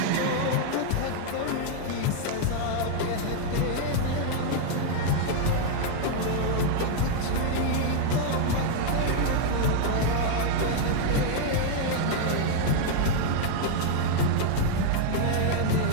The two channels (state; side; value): different; both; correlation 0.00